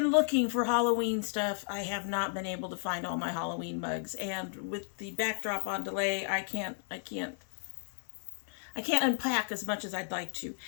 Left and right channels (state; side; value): silent; right; 56 dB below the other